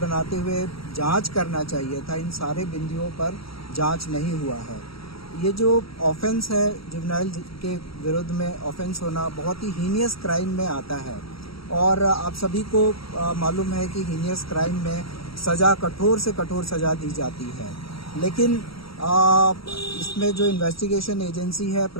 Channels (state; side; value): late; right; 0.75 ms